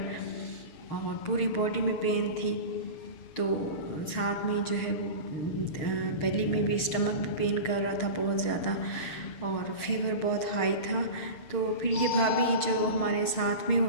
और पूरी बॉडी में पेन थी। तो साथ में जो है वो बेली में भी, स्टमक भी पेन कर रहा था बहुत ज़्यादा और फीवर बहुत हाई था। तो फिर ये भाभी जो हमारे साथ में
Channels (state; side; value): late; right; 6.5 ms